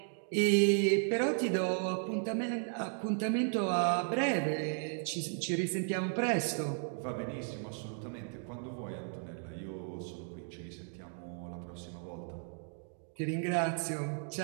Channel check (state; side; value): silent; left; 54 dB below the other